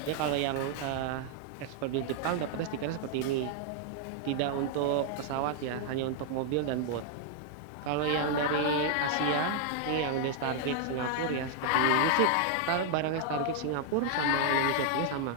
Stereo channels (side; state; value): both; different; correlation 0.00